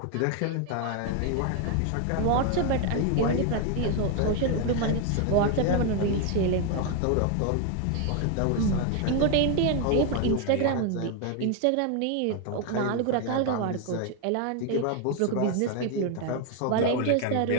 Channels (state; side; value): different; both; correlation 0.01